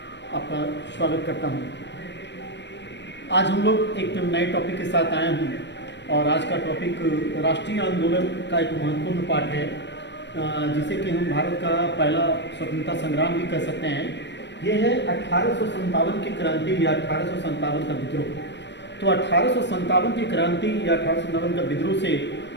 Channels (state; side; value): late; right; 0.52 ms